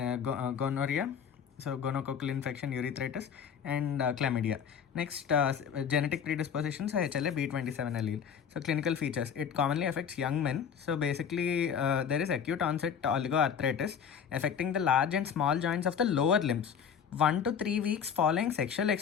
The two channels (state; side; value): quieter; right; 7.5 dB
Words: so gonococcal infection, urethritis, and chlamydia. Next, genetic predispositions, HLA B27 allele. So clinical features, it commonly affects young men. So basically there is acute onset oligoarthritis affecting the large and small joints of the lower limbs. 1 to 3 weeks following sexual